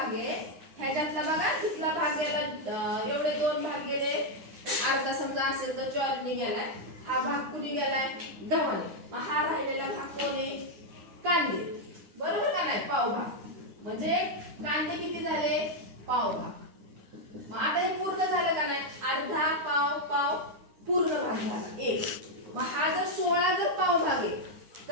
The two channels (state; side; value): late; left; 9.7 ms